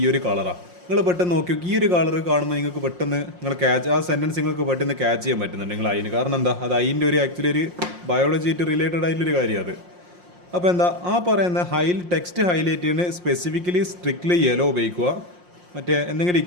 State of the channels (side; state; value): left; late; 5.6 ms